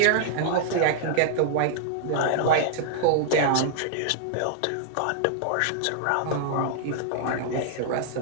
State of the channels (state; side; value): different; both; correlation -0.01